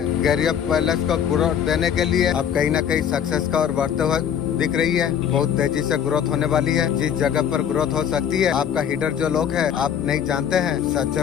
कैरियर पैलेस को ग्रोथ देने के लिए आप कहीं ना कहीं सक्सेस का और बढ़ते हुए दिख रही है। बहुत तेजी से ग्रोथ होने वाली है। जिस जगह पर ग्रोथ हो सकती है, आपका हिडर जो लोग है आप नहीं जानते हैं। सच्चे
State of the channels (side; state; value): right; quieter; 8.7 dB